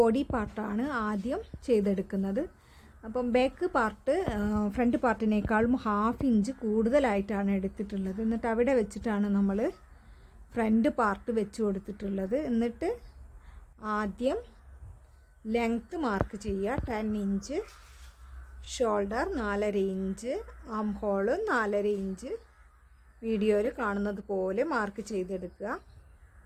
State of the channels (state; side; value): identical; both; correlation 1.00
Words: പാർട്ടാണ് ആദ്യം ചെയ്തെടുക്കുന്നത്. അപ്പം ബാക്ക് പാർട്ട് ഫ്രണ്ട് പാർട്ടിനേക്കാളും 1/2 ഇഞ്ച് കൂടുതലായിട്ടാണ് എടുത്തിട്ടുള്ളത്. എന്നിട്ട് അവിടെ വെച്ചിട്ടാണ് നമ്മൾ ഫ്രണ്ട് പാർട്ട് വെച്ച് കൊടുത്തിട്ടുള്ളത്. എന്നിട്ട് ആദ്യം ലെങ്ത്ത് മാർക്ക് ചെയ്യുക 10 inch, shoulder 4.5 inch, arm hole 4.5 inch വീഡിയോയിൽ കാണുന്നത് പോലെ മാർക്ക് ചെയ്തെടുക്കുക.